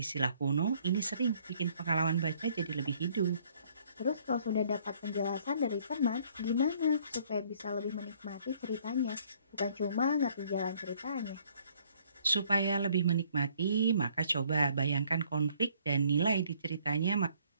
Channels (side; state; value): both; inverted; correlation -0.62